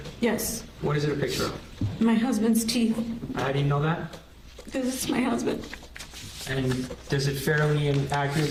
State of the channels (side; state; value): both; identical; correlation 1.00